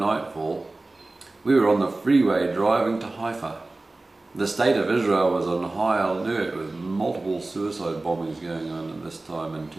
we were on the freeway driving to Haifa. The state of Israel was on high alert with multiple suicide bombings going on at this time in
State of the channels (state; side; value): quieter; left; 3.0 dB